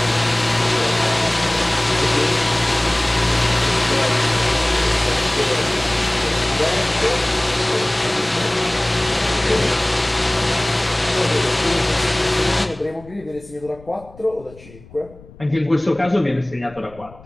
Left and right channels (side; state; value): left; noise; rumble, 22 dB below the sound